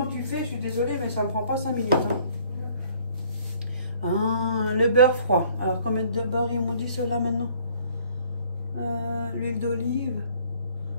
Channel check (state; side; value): inverted; both; correlation -0.58